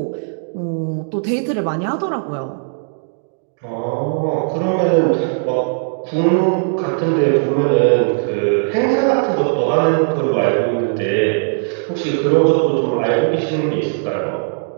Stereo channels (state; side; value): silent; left; digital silence